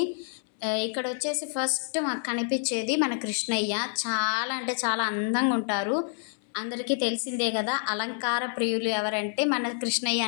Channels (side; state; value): right; silent; 59 dB below the other